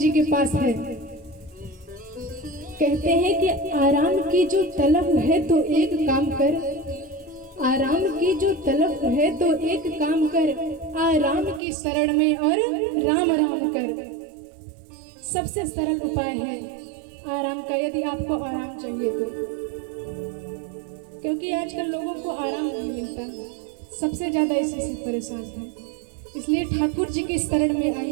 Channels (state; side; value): drops out; left; at 11.6 s